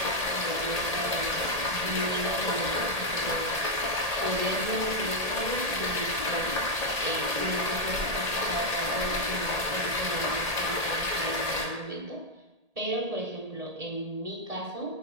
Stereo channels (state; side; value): late; left; 1.8 ms